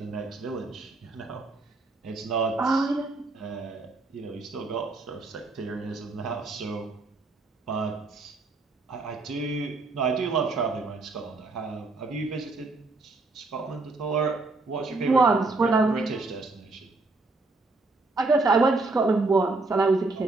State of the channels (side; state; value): left; quieter; 3.4 dB